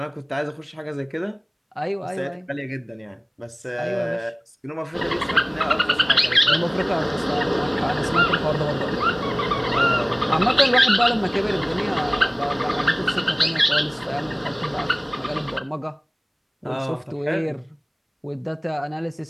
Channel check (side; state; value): both; identical; correlation 1.00